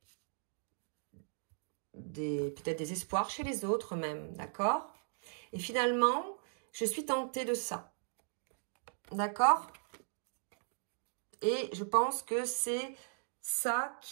peut-être des espoirs chez les autres même, d'accord? Et finalement, je suis tentée de ça, d'accord? Et je pense que c'est ça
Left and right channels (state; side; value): silent; left; digital silence